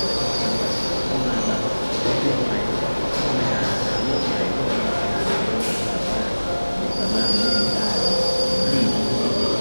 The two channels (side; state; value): both; inverted; correlation -1.00